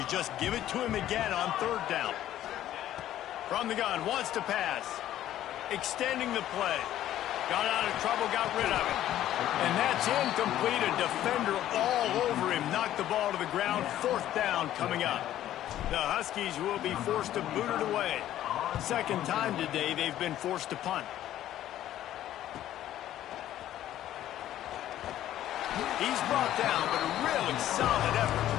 just give it to him again on 3rd down? From the gun, wants to pass. Extending the play. Got out of trouble, got rid of it. And that's incomplete. A defender all over him. Knocked the ball to the ground. 4th down coming up. The Huskies will be forced to boot it away. 2nd time today they've been forced to punt. He's brought down, but a really solid effort to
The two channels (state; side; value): quieter; right; 12.6 dB